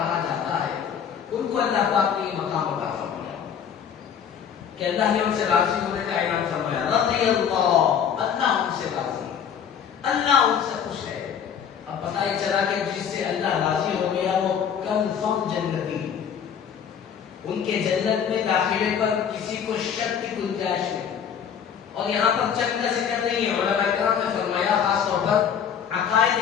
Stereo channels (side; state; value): right; quieter; 8.0 dB